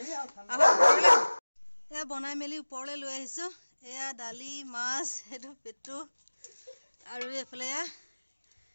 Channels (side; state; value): both; inverted; correlation -1.00